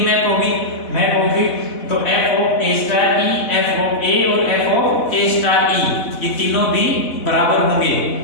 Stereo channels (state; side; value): late; right; 4.1 ms